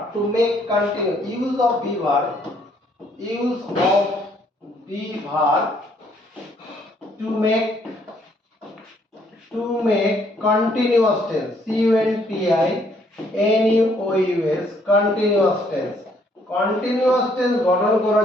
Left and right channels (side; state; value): both; normal; correlation 0.67